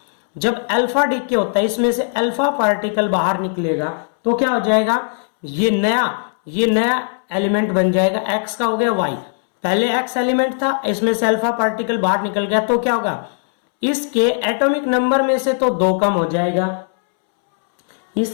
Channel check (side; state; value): right; silent; 67 dB below the other